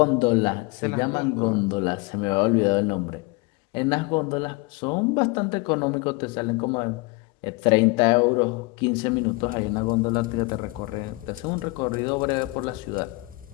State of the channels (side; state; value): right; quieter; 25.0 dB